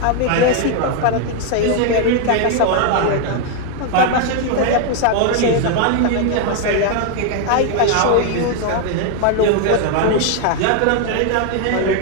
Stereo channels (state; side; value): different; both; correlation 0.01